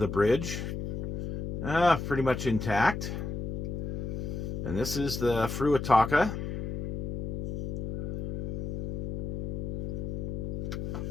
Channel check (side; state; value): left; noise; hum, 3 dB below the sound